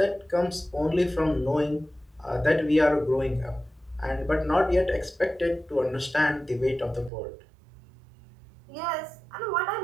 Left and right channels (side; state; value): left; drops out; at 7.1 s